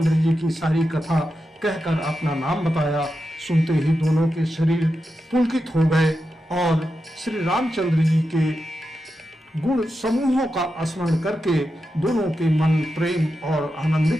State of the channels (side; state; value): both; normal; correlation 0.89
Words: जी की सारी कथा कहकर अपना नाम बताया। सुनते ही दोनों के शरीर पुलकित हो गए और श्री रामचंद्र जी के गुण समूहों का स्मरण करके दोनों के मन प्रेम और